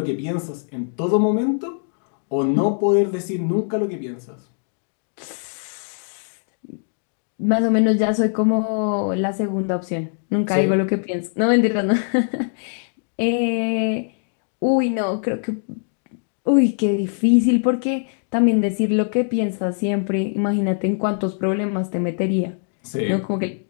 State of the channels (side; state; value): right; silent; digital silence